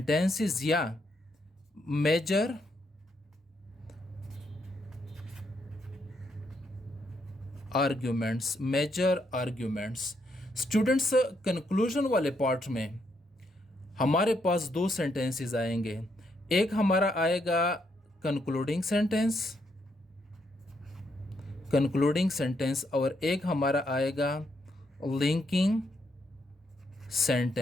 या major arguments, major arguments. Students, conclusion वाले पार्ट में हमारे पास 2 सेंटेंसेस आएंगे। एक हमारा आएगा कंक्लूडिंग सेंटेंस और एक हमारा आएगा लिंकिंग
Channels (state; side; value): normal; both; correlation 0.77